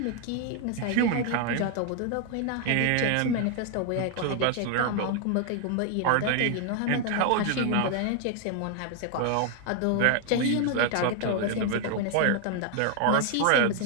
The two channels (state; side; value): different; both; correlation 0.00